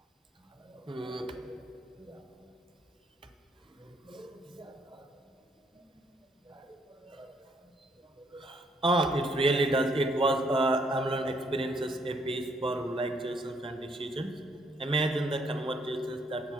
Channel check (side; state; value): both; normal; correlation 0.69